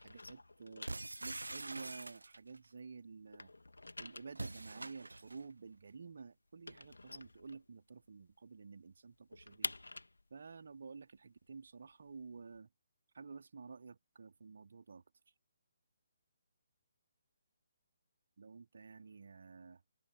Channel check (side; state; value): both; inverted; correlation -0.95